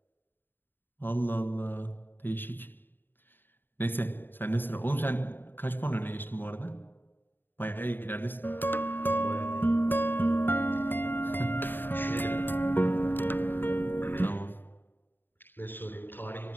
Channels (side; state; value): right; late; 0.095 ms